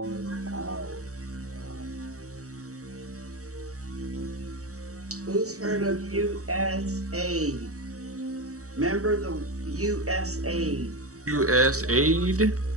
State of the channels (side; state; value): left; late; 0.65 ms